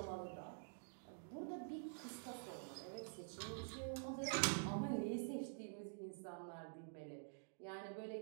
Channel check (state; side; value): silent; left; digital silence